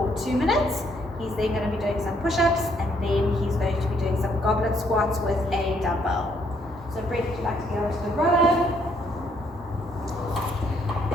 2 minutes. He's then going to be doing some push-ups and then he's going to be doing some goblet squats with a dumbbell. So Brett, would you like to get over to the rower?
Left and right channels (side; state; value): both; normal; correlation 0.69